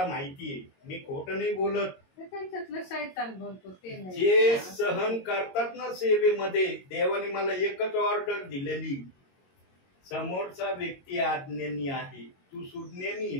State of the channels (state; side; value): late; right; 22 ms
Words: माहितीये, मी खोटं नाही बोलत. त्यांच्यातलं शैतान बोलतो ते नाही. जे सहन करतात ना सेवेमध्ये, देवाने मला एकच ऑर्डर दिलेली, समोरचा व्यक्ती आज्ञानी आहे, तू सुज्ञानी